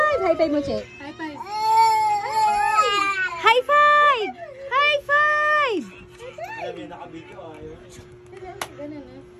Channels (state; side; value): identical; both; correlation 1.00